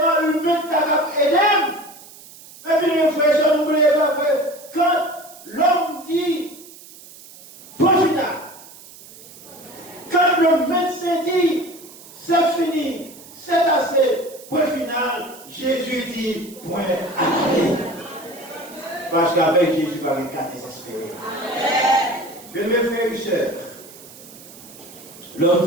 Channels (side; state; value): right; noise; hiss, 19 dB below the sound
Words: humain qui a aidé. Mais puis les frères, n'oubliez pas que quand l'homme dit point final, quand le médecin dit c'est fini, c'est assez, point final, Jésus dit point arrêté. Parce qu'avec Jésus, pas un cas désespéré. Bien, mes frères et sœurs, l'homme